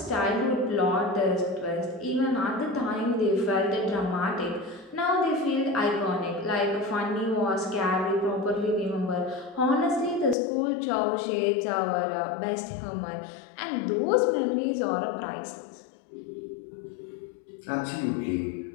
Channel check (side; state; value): right; drops out; at 10.4 s